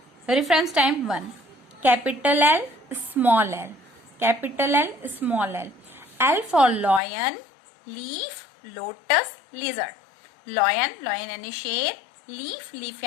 Reference time 1, capital L small L, capital L small L. L for lion, leaf lotus lizard. Lion, lion यानी शेर, लीफ, लीफ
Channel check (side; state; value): right; drops out; at 7.0 s